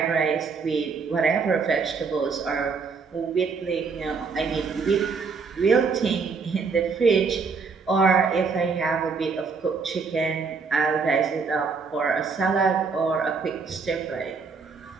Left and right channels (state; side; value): quieter; left; 5.0 dB